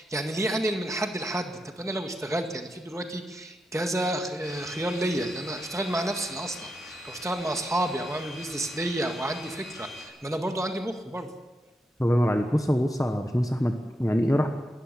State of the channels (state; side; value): normal; both; correlation 0.85